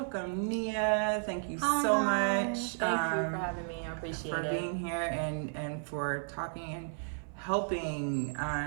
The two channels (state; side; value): silent; left; 56 dB below the other